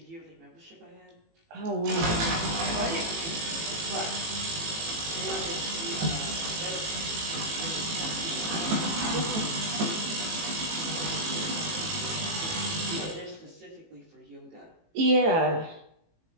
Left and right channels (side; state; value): left; late; 18 ms